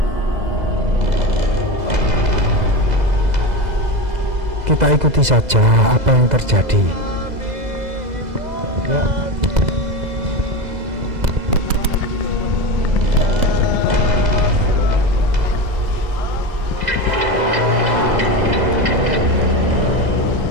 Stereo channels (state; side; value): late; left; 2.0 ms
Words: Kita ikuti saja apa yang terjadi ya.